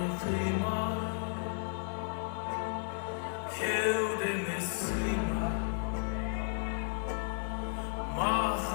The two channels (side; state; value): right; silent; digital silence